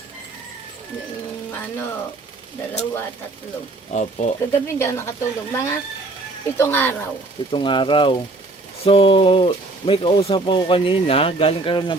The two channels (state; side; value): quieter; left; 3.0 dB